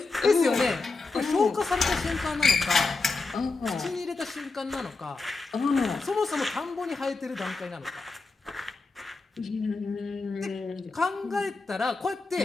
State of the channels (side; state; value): right; quieter; 3.9 dB